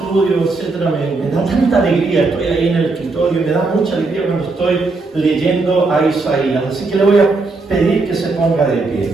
etcétera, me da tanta alegría. Estoy ahí en el escritorio y me da mucha alegría cuando estoy leyendo a Isaías. Así que le voy a pedir que se ponga de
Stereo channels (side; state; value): left; quieter; 3.6 dB